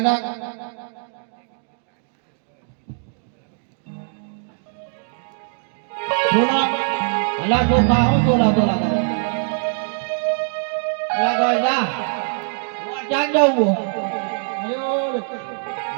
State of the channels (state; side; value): silent; left; digital silence